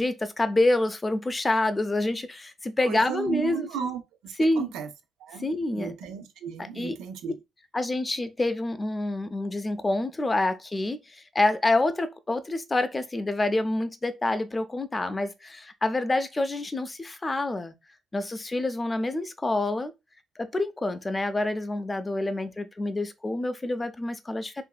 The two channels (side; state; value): both; normal; correlation 0.92